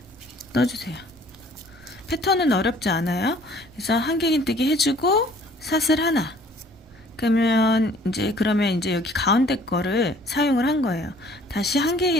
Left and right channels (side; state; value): both; normal; correlation 0.55